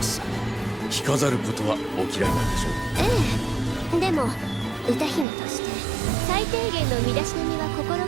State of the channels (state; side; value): drops out; left; at 5.2 s